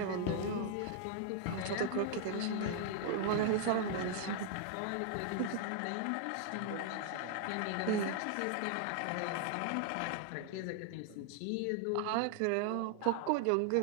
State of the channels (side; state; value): both; different; correlation 0.00